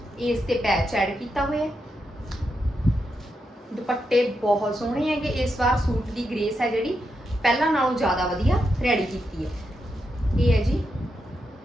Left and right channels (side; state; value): both; normal; correlation 0.84